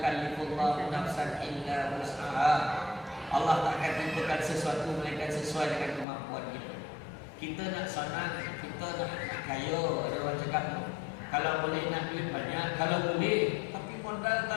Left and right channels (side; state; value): right; drops out; at 6.1 s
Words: nafsan illa wus'aha. Allah tak akan tentukan sesuatu melainkan sesuai dengan kemampuan kita. Kita nak senang, kita nak kaya. Ada orang cakap tu, kalau boleh nak duit banyak, kalau boleh, tapi modal